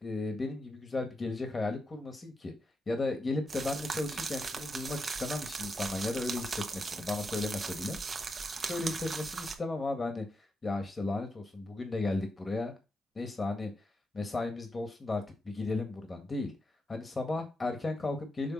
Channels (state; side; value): normal; both; correlation 0.85